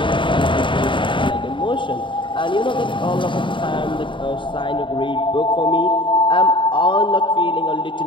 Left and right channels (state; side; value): late; right; 0.24 ms